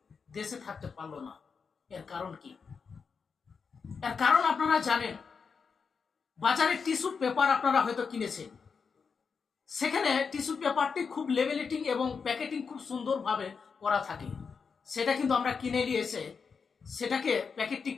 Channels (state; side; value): quieter; right; 5.6 dB